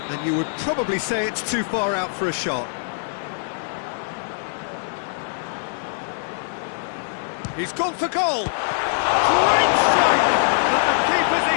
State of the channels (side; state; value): right; silent; digital silence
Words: And you would probably say it's too far out for a shot. He's gone for goal. Great strike, but the keeper's